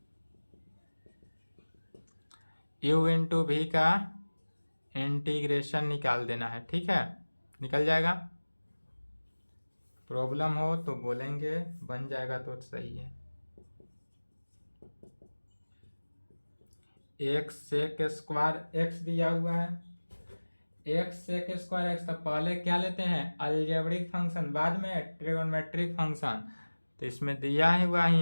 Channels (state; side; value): inverted; both; correlation -1.00